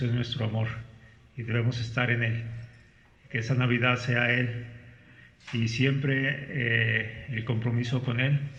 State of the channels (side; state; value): both; identical; correlation 1.00